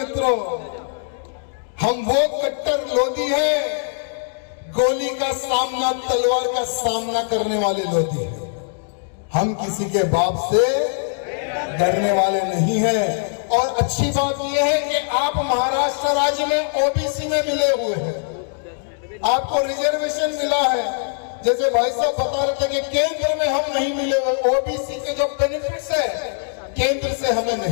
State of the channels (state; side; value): silent; right; digital silence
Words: हम वो कट्टर लोधी है, गोली का सामना, तलवार का सामना करने वाले लोधी है। हम किसी के बाप से डरने वाले नहीं है। और अच्छी बात यह है कि आप महाराष्ट्र राज्य में ओबीसी में मिले हुए हैं, आपको रिजर्वेशन मिला है। जैसे भाई साहब बता रहे थे कि केंद्र में हम नहीं मिले हुए, ओबीसी के जो बेनिफिट्स है केंद्र से हमें